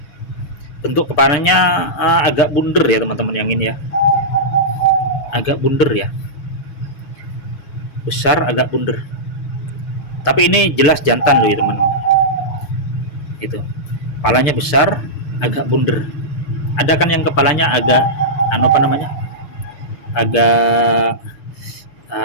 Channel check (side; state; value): right; late; 6.7 ms